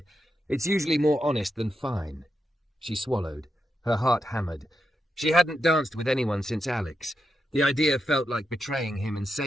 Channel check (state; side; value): normal; both; correlation 0.85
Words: "It's usually more honest than fine." She swallowed. Her heart hammered. She hadn't danced with anyone since Alex. The idea felt like betraying him and